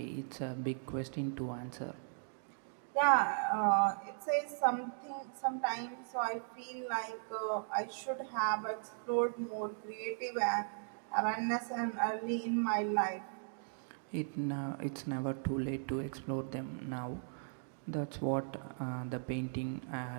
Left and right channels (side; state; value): left; silent; digital silence